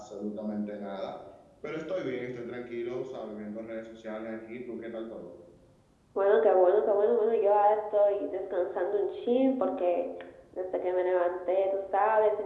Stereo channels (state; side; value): identical; both; correlation 1.00